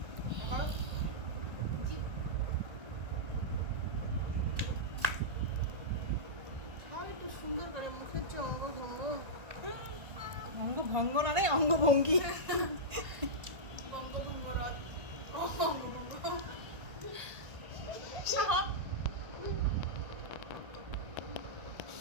আর একটু সুন্দর করে মুখের চঙ্গ ভঙ্গ অঙ্গ ভঙ্গ না রে অঙ্গভঙ্গি।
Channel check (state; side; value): late; left; 1.5 ms